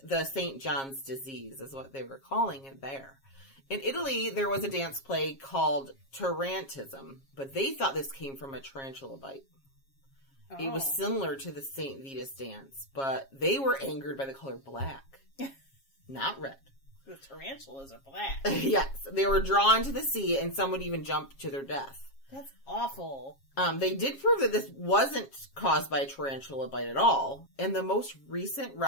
the St. John's disease, is what they were calling it there. In Italy, there was a dance plague called tarantism, but they thought this came from a tarantula bite. Oh. It was similar to the St. Vitus dance, but they were angered by the color black, not red. The tarantulas are black. Yes, they were drawn to the sea, and some would even jump to their death. That's awful. They did prove that this wasn't caused by a tarantula bite at all, and the most recent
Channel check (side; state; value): right; late; 7.4 ms